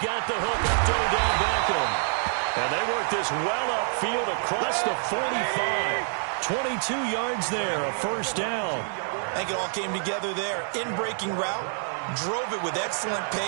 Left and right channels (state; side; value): silent; left; digital silence